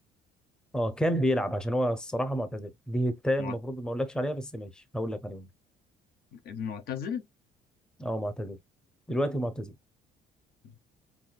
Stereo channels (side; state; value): both; normal; correlation 0.85